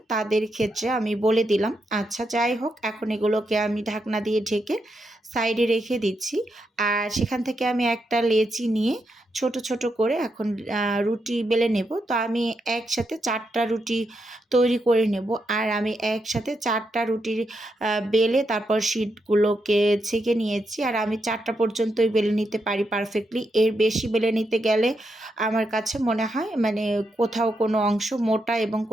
তাদের ক্ষেত্রে আমি বলে দিলাম। আচ্ছা যাই হোক, এখন এগুলোকে আমি ঢাকনা দিয়ে ঢেকে সাইডে রেখে দিচ্ছি। আর সেখান থেকে আমি একটা লেচি নিয়ে ছোট ছোট করে এখন রুটি বেলে নেব। তো আমি একসাথে 4টা রুটি তৈরি করে নেব। আর আমি একসাথে 4টা রুটির বেলে তারপর শিটগুলোকে ছেঁকে নিয়েছি। আর আমি 4টা পর্যন্তই বেলে নিতে পারি পারফেক্টলি। এর বেশি বেলে নিতে গেলে আমার কাছে মনে হয় মানে কোথাও কোনো অংশ মোটা এবং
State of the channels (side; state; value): both; normal; correlation 0.83